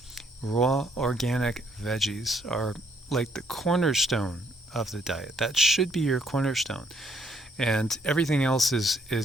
Raw organic veggies are like the cornerstone of the diet. That should be your cornerstone. And everything else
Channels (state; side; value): normal; both; correlation 0.68